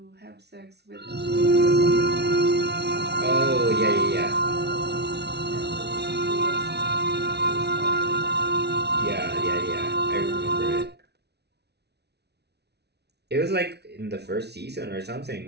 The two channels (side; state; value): left; late; 0.49 ms